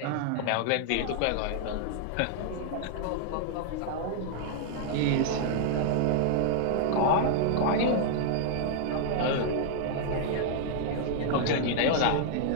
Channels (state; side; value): different; both; correlation -0.01